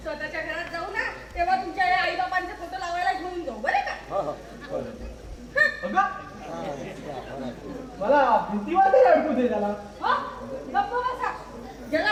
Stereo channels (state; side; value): identical; both; correlation 1.00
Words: स्वतःच्या घरात जाऊ ना, तेव्हा तुमच्या आई बाबांचे फोटो लावायला घेऊन जाऊ बरं का? अगं, मला भीती वाटते अडकू दे त्याला. हो, गप्प बसा. ज्याला